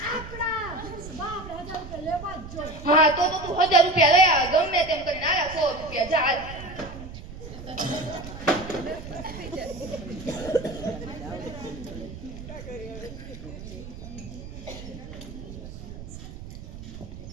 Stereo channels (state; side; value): noise; right; rumble, 12 dB below the sound